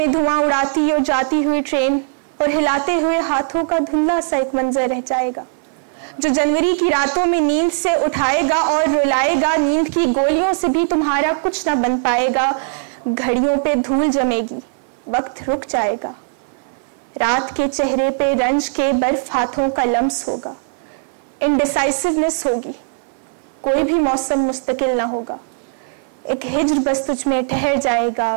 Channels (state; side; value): silent; left; digital silence